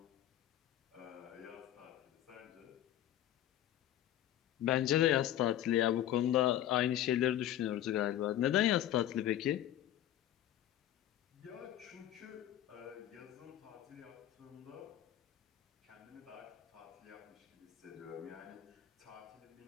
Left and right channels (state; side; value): quieter; right; 12.3 dB